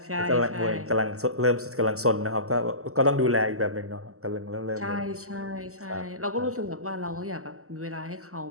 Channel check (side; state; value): left; late; 0.64 ms